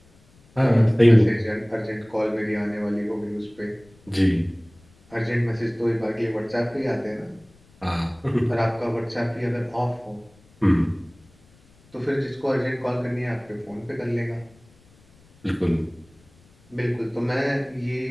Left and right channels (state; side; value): noise; left; rumble, 29 dB below the sound